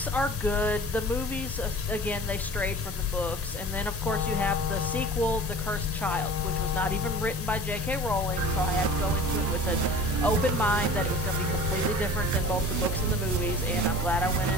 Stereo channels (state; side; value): normal; both; correlation 0.41